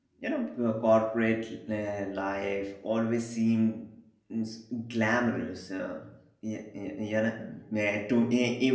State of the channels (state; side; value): identical; both; correlation 1.00